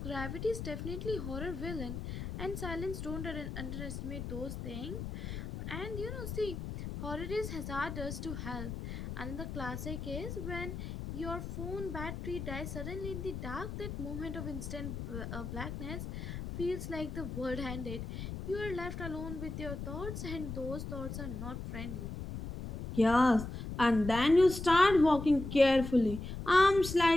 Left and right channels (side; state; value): left; noise; rumble, 7 dB below the sound